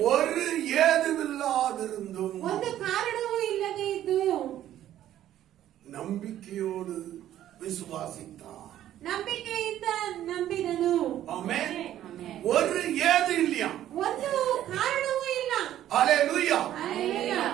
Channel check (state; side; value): quieter; left; 12.2 dB